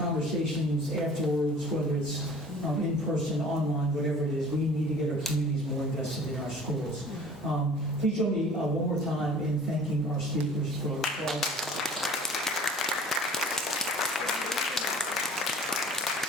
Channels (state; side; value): normal; both; correlation 0.46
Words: afterwards, whether it's in person, online, whatever it is, we need to get our communities more invested in our schools. Please join me one more time in thanking our speakers for